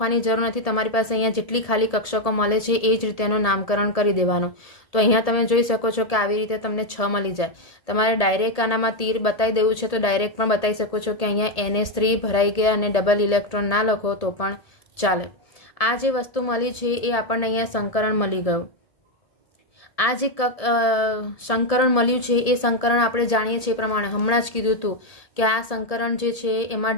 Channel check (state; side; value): late; right; 1.8 ms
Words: જરૂર નથી. તમારી પાસે અહીંયા જેટલી ખાલી કક્ષકો મળે છે એ જ રીતે એનું નામકરણ કરી દેવાનું. તો અહીંયા તમે જોઈ શકો છો કે આવી રીતે તમને 6 મળી જાય. તમારે ડાયરેક્ટ આનામાં તીર બતાવી દેવું છે તો ડાયરેક્ટ પણ બતાવી શકો છો કે અહીંયા NH3 ભરાઈ ગયા અને ડબલ ઇલેક્ટ્રોન ના લખો તો પણ ચાલે. આ જે વસ્તુ મળી છે એ આપણને અહીંયા સંકરણ મળી ગયું. આ જે સંકરણ મળ્યું છે એ સંકરણ આપણે જાણીએ છીએ એ પ્રમાણે હમણાં જ કીધું હતું કે આ સંકરણ જે છે એમાં